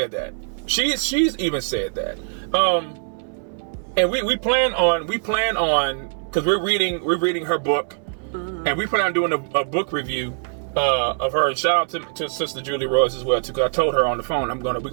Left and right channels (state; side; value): silent; left; 64 dB below the other